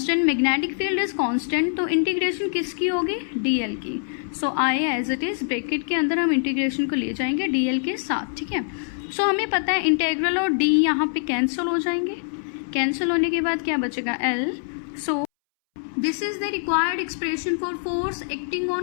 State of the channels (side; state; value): right; silent; 63 dB below the other